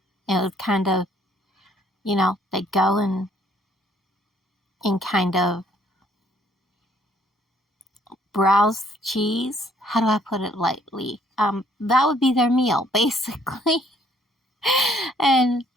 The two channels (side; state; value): both; normal; correlation 0.64